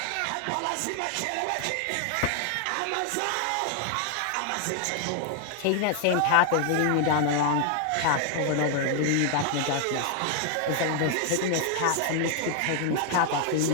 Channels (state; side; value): different; both; correlation 0.00